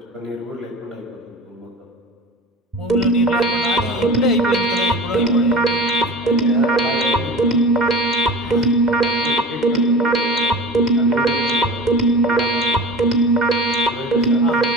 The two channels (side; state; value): both; normal; correlation 0.36